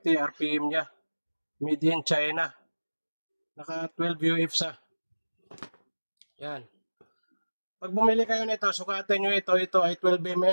RPM niya. Made in China. Naka 12 UF sa. Yan. Pag bumili kayo nito, sukatin nyo ito. Ito ay 12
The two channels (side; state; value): both; inverted; correlation -1.00